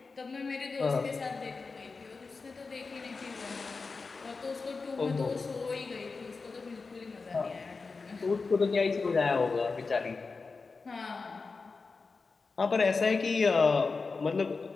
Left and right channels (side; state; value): right; quieter; 4.3 dB